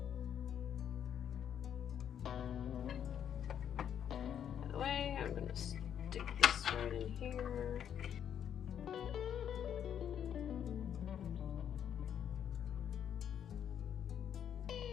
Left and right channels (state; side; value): quieter; right; 9.1 dB